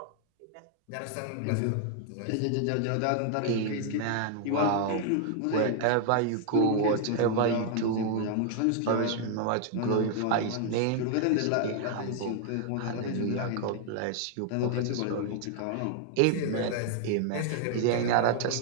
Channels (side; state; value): both; different; correlation 0.00